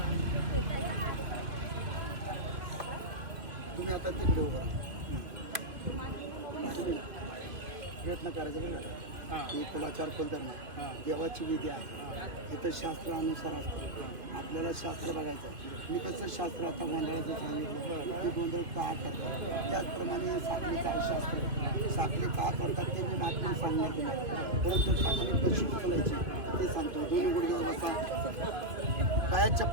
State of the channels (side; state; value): left; late; 2.3 ms